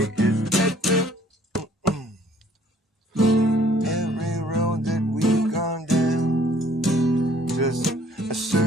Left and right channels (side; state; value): both; normal; correlation 0.59